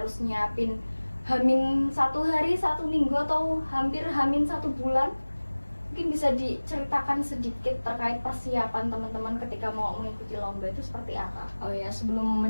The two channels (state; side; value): inverted; both; correlation -1.00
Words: nyiapin hamin 1 hari, 1 minggu, atau hampir hamin 1 bulan? Mungkin bisa diceritakan sedikit terkait persiapan teman-teman ketika mau mengikuti lomba itu seperti apa? Oh ya, sebelum